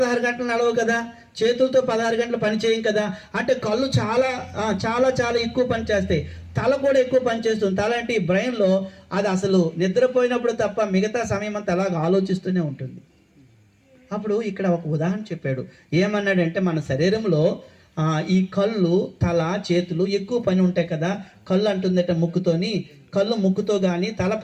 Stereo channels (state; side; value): identical; both; correlation 1.00